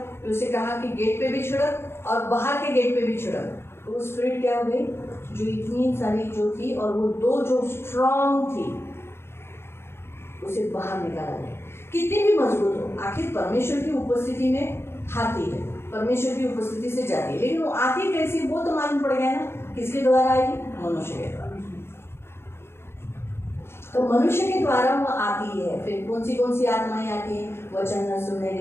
तो उसे कहा कि गेट पे भी छिड़क और बाहर के गेट पे भी छिड़क. तो वो स्पिरिट क्या हो गई, जो इतनी सारी जो थी और वो 2 जो स्ट्रांग थी उसे बाहर निकाला गया. कितनी भी मजबूत हो, आखिर परमेश्वर की उपस्थिति में आती है, परमेश्वर की उपस्थिति से जाती है, लेकिन वो आती कैसी वो तो मालूम पड़ गया ना, किसके द्वारा आएगी, मनुष्य के द्वारा. तो मनुष्य के द्वारा वो आती है. फिर कौन सी आत्माएं आती हैं, वचन न सुनने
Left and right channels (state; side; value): late; right; 0.12 ms